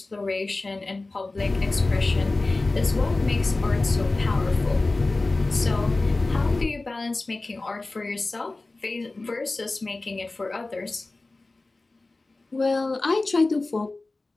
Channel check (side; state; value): right; quieter; 3.2 dB